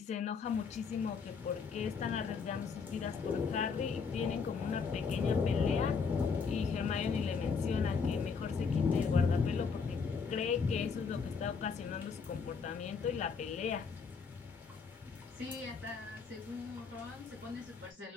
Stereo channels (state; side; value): quieter; right; 5.4 dB